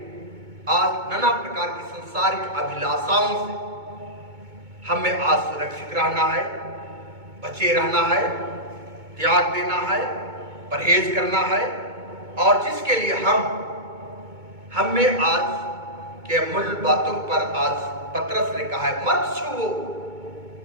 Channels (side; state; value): left; late; 2.2 ms